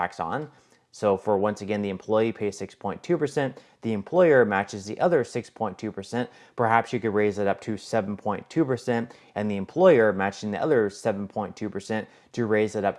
on. So for, once again, the employee pays 6.2%, the employer matches the other 6.2%. Perhaps you could raise it up to 7.2%, and the employer matching the other 7.2% to raise it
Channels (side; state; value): both; identical; correlation 1.00